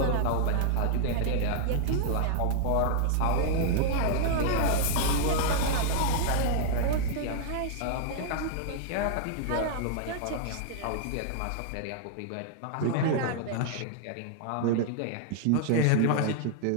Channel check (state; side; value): different; both; correlation 0.00